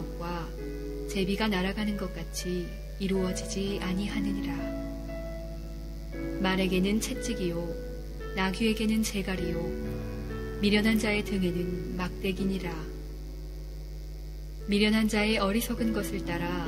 제비가 날아가는 것 같이 이루어지지 아니하느니라. 말에게는 채찍이요 나귀에게는 재갈이요 미련한 자의 등에는 막대기니라. 미련한 자의 어리석은 것을 따라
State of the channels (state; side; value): identical; both; correlation 1.00